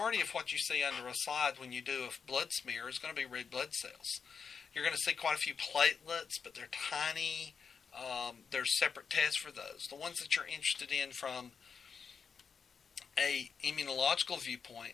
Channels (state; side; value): quieter; right; 6.1 dB